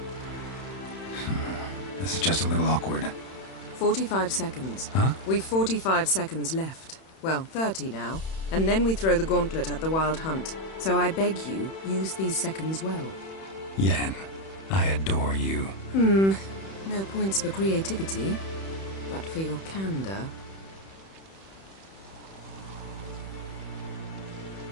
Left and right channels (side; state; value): right; late; 31 ms